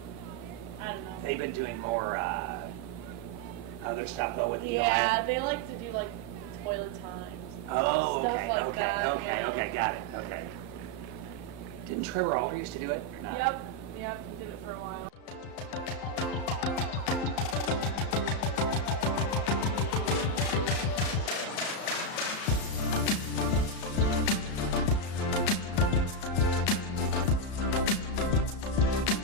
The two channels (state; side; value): late; right; 34 ms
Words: I don't know. They've been doing more other stuff though with the Yeah, they like to do like toilet times. Oh, stuff okay, like okay, that, okay, yeah. okay, got it, okay. Didn't Trevor Alder used to do it or not? Yep, he did it for a while.